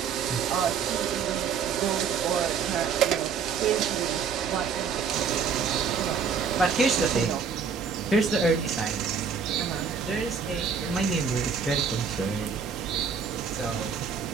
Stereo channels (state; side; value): quieter; left; 6.3 dB